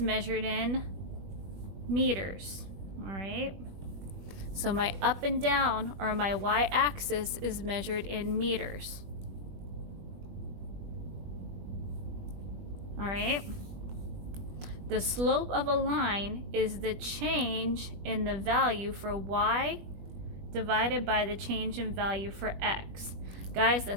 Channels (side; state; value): left; late; 20 ms